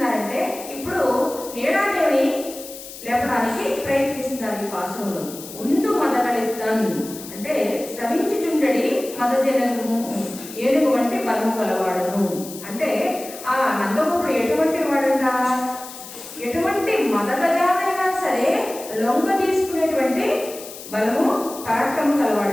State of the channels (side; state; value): left; noise; hiss, 14 dB below the sound